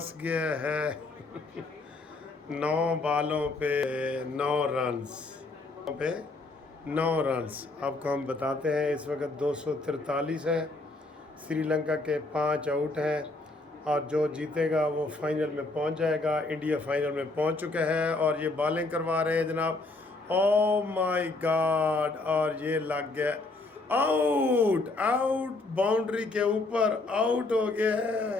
गया है। 9 बालों पे 9 रन्स पे 9 रन्स आपको हम बताते हैं। इस वक्त 243 है। श्रीलंका के 5 आउट हैं और जो जीतेगा वो फाइनल में पहुंच जाएगा। इंडिया फाइनल में पहुंच चुका है और ये बॉलिंग करवा रहे हैं जनाब। ओ माय गॉड, और ये लग गया। आउट आउट, बाउंड्री के ऊपर आउट हो गया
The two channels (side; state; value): right; quieter; 3.1 dB